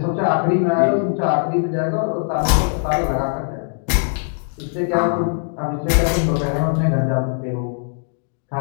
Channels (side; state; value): right; silent; digital silence